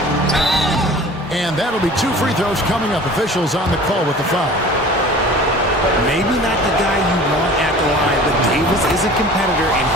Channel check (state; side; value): normal; both; correlation 0.43